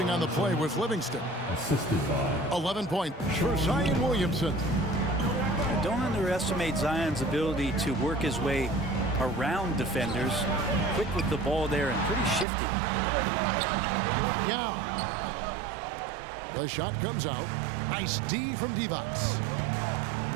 on the play was Livingston. Assisted by 11 points for Zion Williamson. Don't underestimate Zion's ability to work his way around defenders. Quick with the ball there and pretty shifty. Yeah. The shot comes out. Nice D from Divac.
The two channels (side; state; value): left; drops out; at 12.5 s